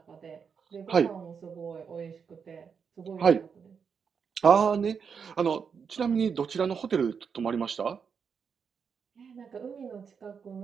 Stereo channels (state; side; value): quieter; left; 6.4 dB